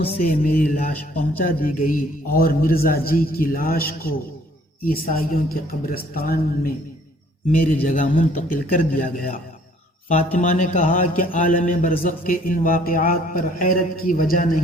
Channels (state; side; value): normal; both; correlation 0.59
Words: سے میری لاش پہنچا دی گئی اور مرزا جی کی لاش کو عیسائیوں کے قبرستان میں میری جگہ منتقل کر دیا گیا۔ فاطمہ نے کہا کہ عالم برزخ کے ان واقعات پر حیرت کی وجہ